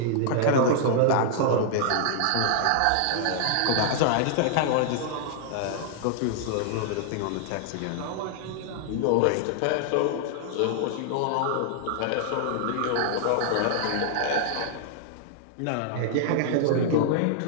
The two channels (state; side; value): different; both; correlation -0.01